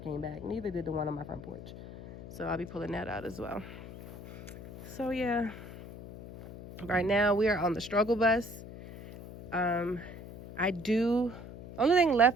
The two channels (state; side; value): noise; left; hum, 13 dB below the sound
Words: back. Neither did the one on my front porch. So I'll be pulling that out as well. So yeah, right now we are on the struggle bus. Only thing